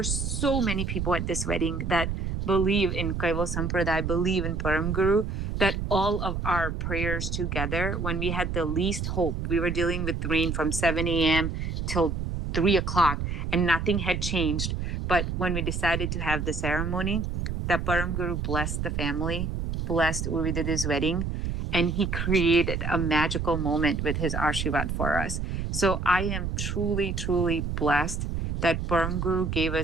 so many people at this wedding that believe in Kaival Sampradaya, believe in Param Guru, that all of our prayers together, when we had the least hope, we were dealing with rain from 7 a.m. till 3 o'clock and nothing had changed. But when we decided to have the ceremony, that Param Guru blessed the family, blessed Urvididi's wedding, and he created a magical moment with his Ashirvad for us. So I am truly, truly blessed that Param Guru gave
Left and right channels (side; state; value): right; noise; rumble, 3 dB below the sound